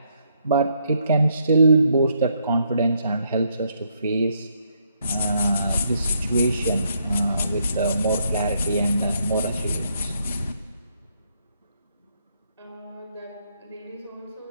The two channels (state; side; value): inverted; both; correlation -0.74